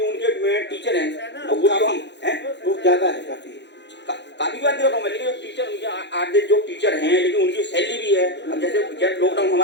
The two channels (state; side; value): late; right; 0.51 ms